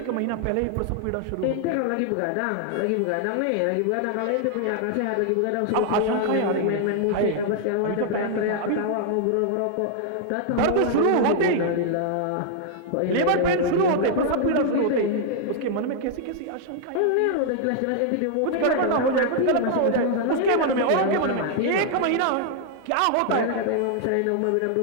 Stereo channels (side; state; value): both; different; correlation 0.00